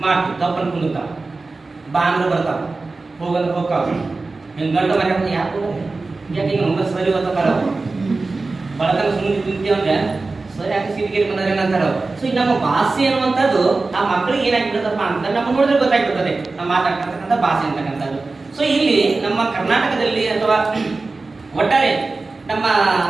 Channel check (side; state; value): left; quieter; 3.6 dB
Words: ಮಾಡ್ತೀವಿ, ತಪ್ಪನ್ನು ಕುಂದಿರ್ತಾವೆ, ಬಾ ಅಂದ್ರೆ ಬರ್ತಾವೆ, ಹೋಗಂದ್ರೆ ಹೋಗ್ತಾವೆ, ಹಿಂಗೆ ಗಂಟು ಮನೆ ಯಾಕೆ ಯಾಕೆ ಈಗ ನಮ್ಗೆ ಸರಿ ಗೊತ್ತ ಬರೋ ಬಳಕನ ಸುಮ್ಮನೆ ತಿಂತೀವಿ ಅಂದ್ರೆ ಸರಿ ಯಾಕೆ ಸೀಟಿಗೆ ಬಂದ್ರೆ ಏನಂತಾರ. ಸೊ ಈಗ ನಮ್ಮ ಭಾಷೆ ಅನ್ನುವಂಥದ್ದು ಆ ಮಕ್ಕಳಿಗೆ ಏನಾಗ್ಬಿಡ್ತಪ್ಪ ಅಂತ ನಮ್ಮ ನೋಡಿದ್ರೆ ಗೊತ್ತಾಗ್ಬಿಡ್ತದೆ ನಾವು ಮಾತಾಡ್ತಕ್ಕಂಥ ಭಾಷೆ ಅಂತಕ್ಕಂಥದ್ದು. ಸೊ ಇಲ್ಲಿ ನಮ್ಮ ಕರ್ನಾಟಕದಲ್ಲಿ ಅಥವಾ ಒಟ್ಟಾರೆ ನಮ್ಮ